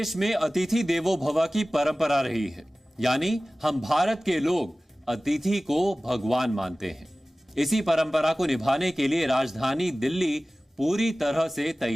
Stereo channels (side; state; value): both; normal; correlation 0.97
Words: में अतिथि देवो भव की परंपरा रही है, यानी हम भारत के लोग अतिथि को भगवान मानते हैं। इसी परंपरा को निभाने के लिए राजधानी दिल्ली पूरी तरह से